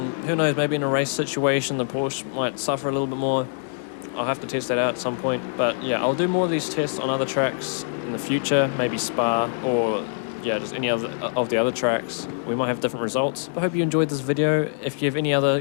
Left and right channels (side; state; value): right; silent; digital silence